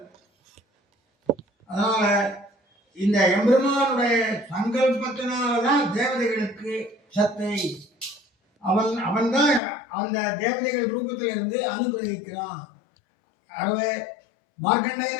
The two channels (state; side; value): drops out; right; at 9.6 s